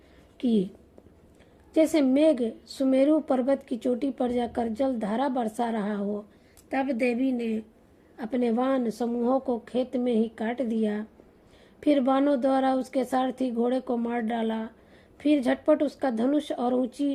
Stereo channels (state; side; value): identical; both; correlation 1.00